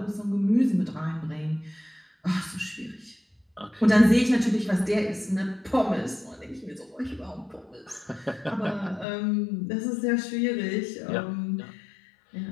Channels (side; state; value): right; drops out; at 9.1 s